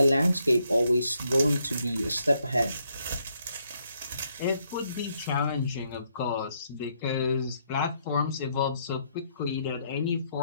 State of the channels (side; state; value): both; inverted; correlation -0.74